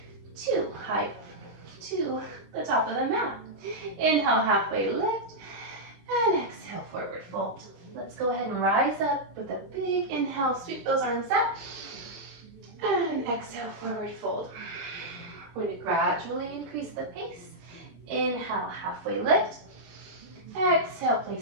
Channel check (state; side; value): late; left; 21 ms